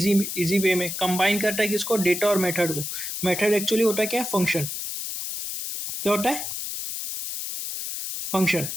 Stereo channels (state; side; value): noise; left; hiss, 5 dB below the sound